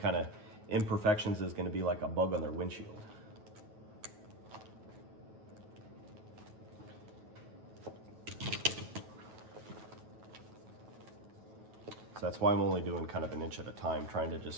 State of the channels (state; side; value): late; left; 9.3 ms